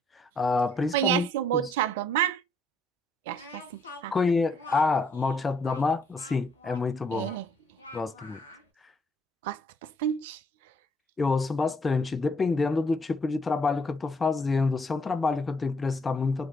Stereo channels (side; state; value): both; normal; correlation 0.67